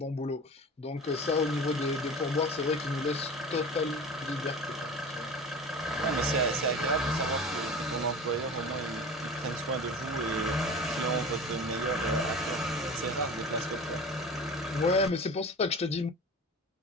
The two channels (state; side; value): normal; both; correlation 0.35